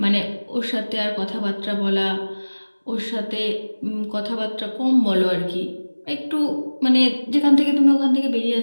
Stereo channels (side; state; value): both; inverted; correlation -1.00